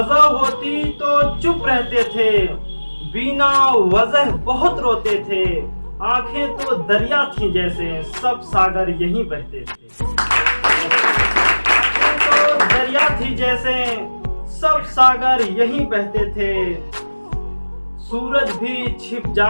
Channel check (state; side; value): inverted; both; correlation -1.00